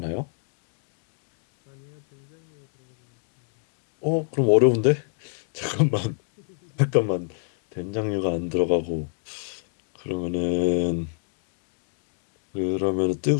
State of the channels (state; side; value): silent; right; 60 dB below the other